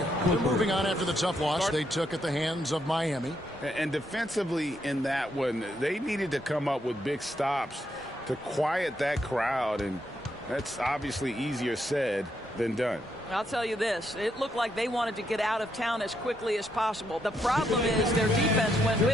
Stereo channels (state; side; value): normal; both; correlation 0.78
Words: They're moving on after the tough loss they took at the hands of Miami. And defensively in that one, they needed to come up with big stops to quiet that crowd. And that's obviously easier said than done. I'll tell you this, it looked like they wanted to get out of town as quickly as possible. The problem is their defense went